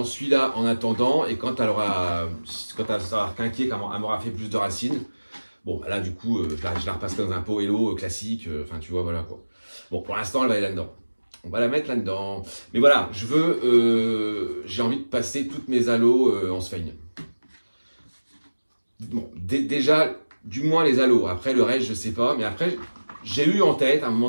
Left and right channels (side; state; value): both; inverted; correlation -1.00